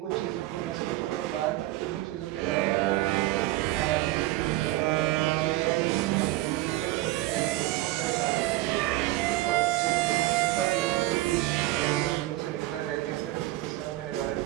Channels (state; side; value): quieter; left; 17.4 dB